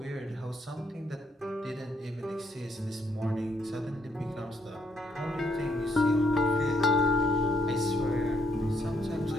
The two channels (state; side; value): normal; both; correlation 0.72